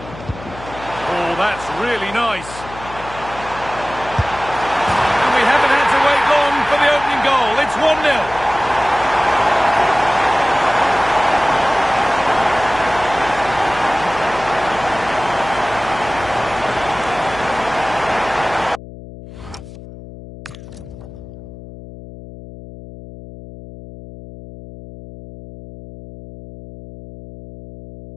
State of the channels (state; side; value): noise; left; hum, 15 dB below the sound